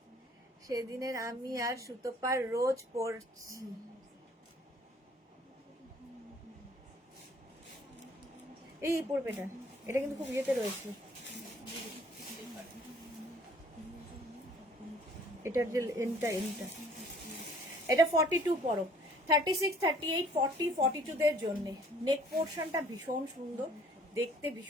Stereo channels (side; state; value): both; normal; correlation 0.57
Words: সেদিনের, আমি আর সুতোপার রোজ পড়ছি। এই পড়বে এটা কিন্তু খুব ইয়েতে রয়েছে, এটার যে এনটা এটা 42 পরো, 36 38 40 42 দের জন্য। নেক পোর্শনটা ভীষণ সুন্দর দেখতে,